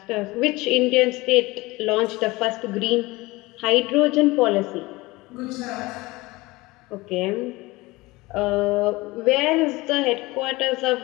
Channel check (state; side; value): quieter; right; 21.5 dB